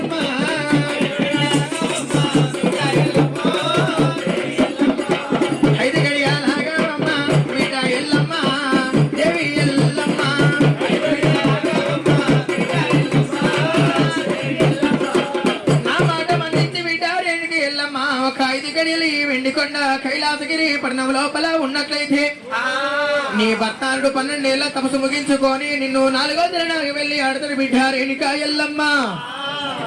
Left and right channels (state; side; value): identical; both; correlation 1.00